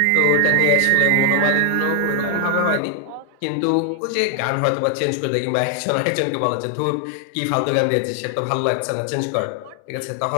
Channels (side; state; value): both; different; correlation 0.00